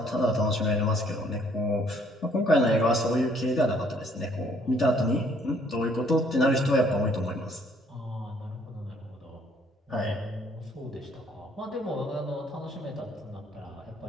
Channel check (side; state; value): both; normal; correlation 0.63